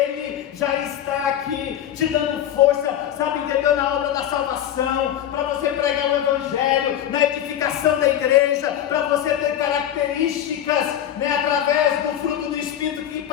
já está aqui te dando força, sabe, entendeu? Na obra da salvação, para você pregar o Evangelho, na edificação da igreja, para você ter características, né, através do fruto do Espírito que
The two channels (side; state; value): right; quieter; 10.8 dB